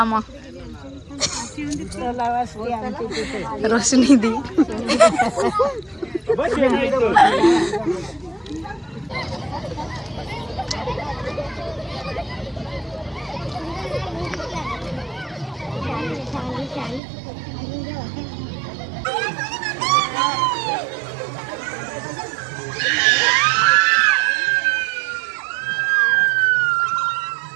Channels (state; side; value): drops out; left; at 17.0 s